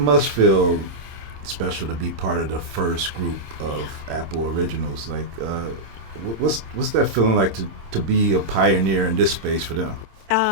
feel special to be part of the first group of Apple originals. Like, what's that feeling like to be a pioneer in this space for them?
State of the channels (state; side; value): late; left; 26 ms